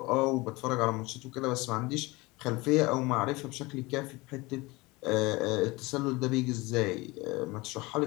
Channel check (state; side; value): quieter; right; 22.9 dB